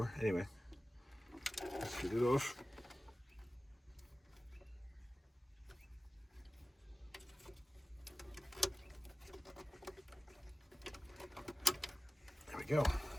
Anyway, let's get it off. There we go.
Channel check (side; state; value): both; normal; correlation 0.97